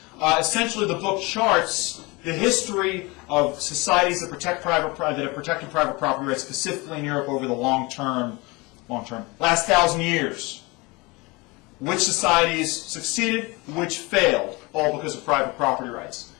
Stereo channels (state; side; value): quieter; right; 25.1 dB